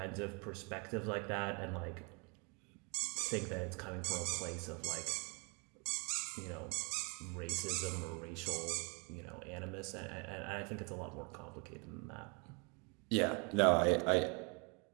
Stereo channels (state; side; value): quieter; left; 32.9 dB